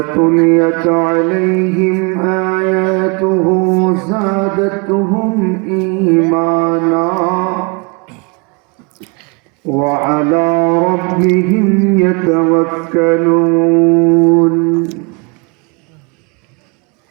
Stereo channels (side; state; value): left; quieter; 31.7 dB